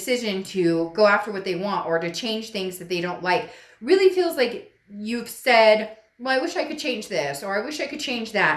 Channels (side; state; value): both; identical; correlation 1.00